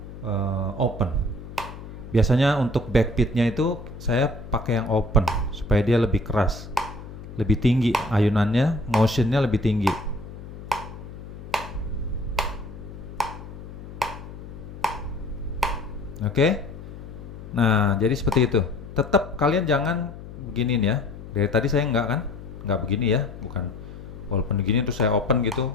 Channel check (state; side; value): noise; left; hum, 13 dB below the sound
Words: open. Biasanya untuk backbeatnya itu saya pakai yang open supaya dia lebih keras, lebih tinggi ayunannya, motionnya lebih tinggi. Oke. Nah, jadi seperti itu. Tetap kalian jangan beginiin ya. Dari tadi saya nggak begini ya, bukan. Walaupun begini terus saya open